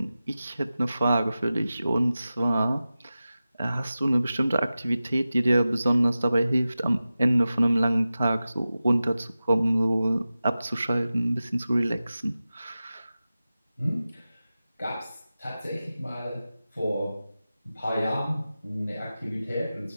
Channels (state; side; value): inverted; both; correlation -0.94